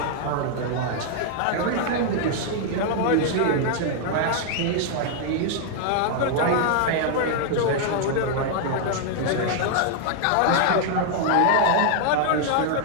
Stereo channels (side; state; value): both; different; correlation 0.00